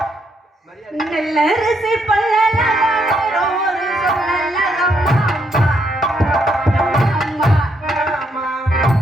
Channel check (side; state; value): both; normal; correlation 0.75